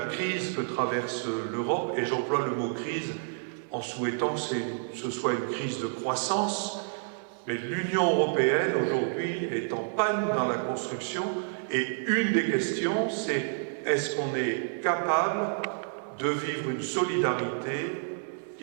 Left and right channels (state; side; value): silent; left; 58 dB below the other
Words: crise que traverse l'Europe, et j'emploie le mot crise en souhaitant que ce soit une crise de croissance, mais l'Union européenne aujourd'hui est en panne dans la construction, et une des questions c'est est-ce qu'on est capable de vivre une solidarité